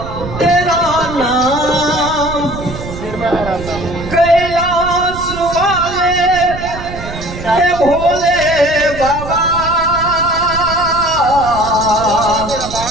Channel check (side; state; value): right; noise; rumble, 10 dB below the sound